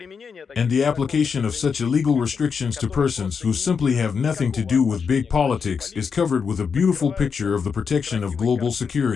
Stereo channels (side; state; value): right; quieter; 6.0 dB